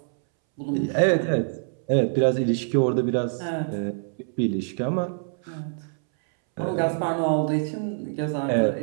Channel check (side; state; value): left; silent; 62 dB below the other